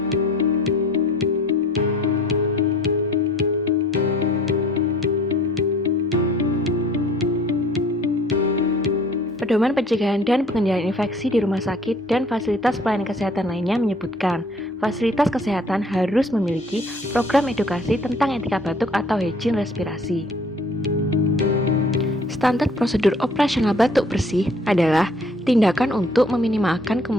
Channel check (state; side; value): normal; both; correlation 0.53